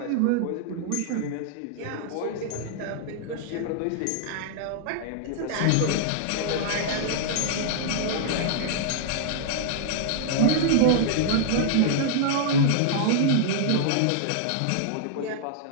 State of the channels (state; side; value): different; both; correlation -0.01